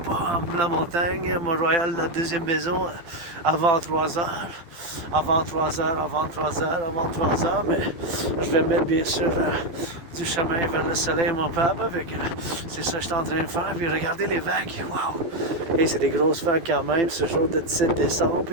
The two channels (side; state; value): left; late; 12 ms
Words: en la montagne, Mont-Royal, la deuxième maison, avant 3 heures, mais je vais mettre bien sûr du chemin vers le soleil, mon papa, c'est ça que je suis en train de faire, puis regardez les vagues, waouh! Et c'est des grosses vagues quand même, ce jour de 17 décembre,